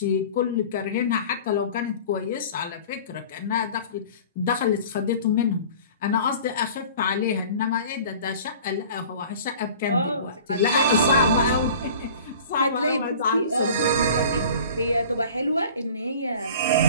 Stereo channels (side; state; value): both; inverted; correlation -0.43